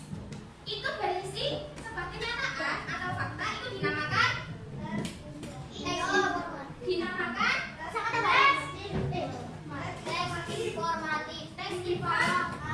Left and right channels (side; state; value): both; identical; correlation 1.00